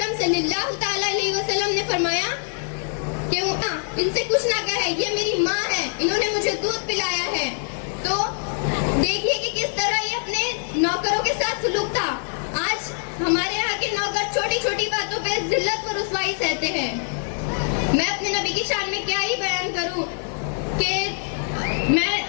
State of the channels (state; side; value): silent; right; 63 dB below the other